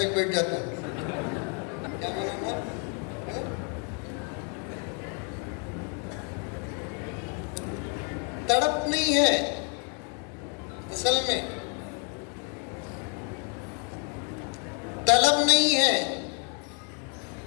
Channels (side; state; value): right; quieter; 36.9 dB